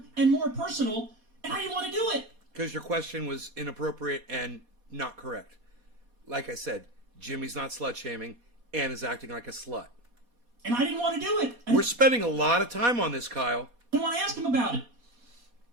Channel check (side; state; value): left; late; 4.2 ms